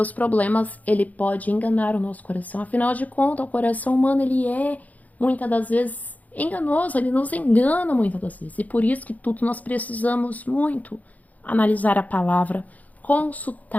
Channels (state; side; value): late; right; 0.076 ms